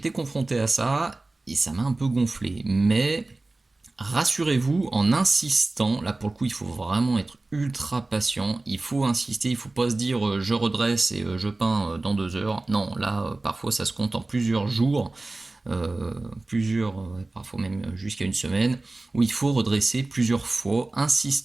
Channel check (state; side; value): quieter; left; 3.1 dB